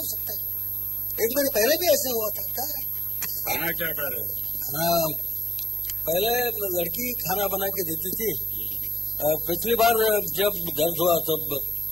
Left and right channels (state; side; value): normal; both; correlation 0.79